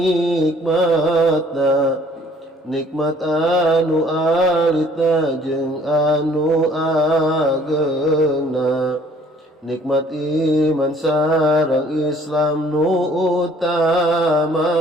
nikmat anu alita jeung anu ageuna, nikmat iman sareng Islam nu utamana.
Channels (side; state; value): both; normal; correlation 0.58